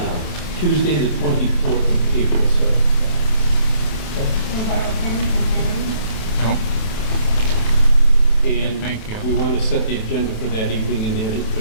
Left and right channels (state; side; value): late; right; 27 ms